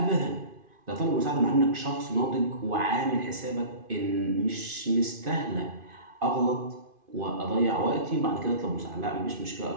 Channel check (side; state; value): left; late; 2.5 ms